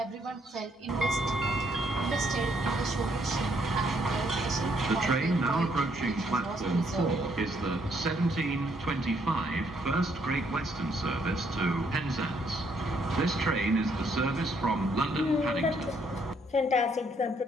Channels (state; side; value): normal; both; correlation 0.70